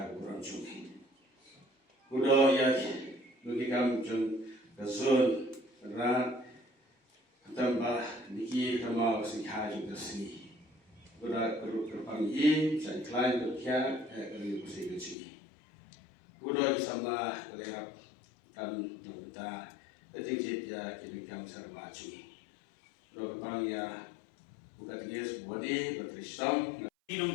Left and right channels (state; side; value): drops out; right; at 15.2 s